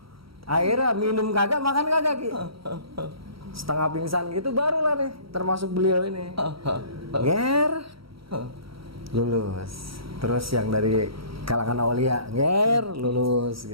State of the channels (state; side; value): late; left; 0.75 ms